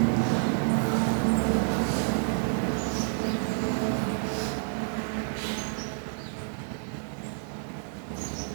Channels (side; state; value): left; silent; 57 dB below the other